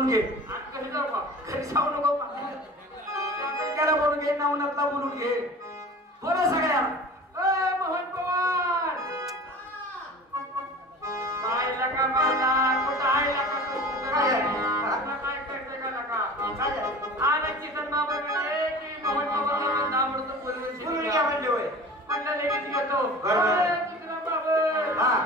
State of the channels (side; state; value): both; normal; correlation 0.39